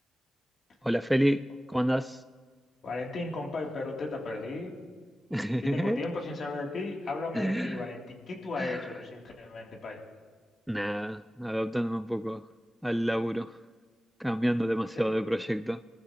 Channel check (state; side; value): normal; both; correlation 0.95